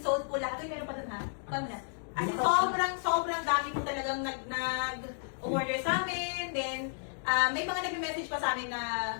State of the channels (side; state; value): right; silent; digital silence